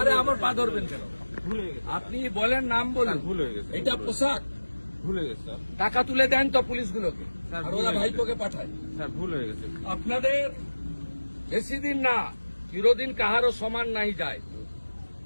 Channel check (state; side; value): inverted; both; correlation -1.00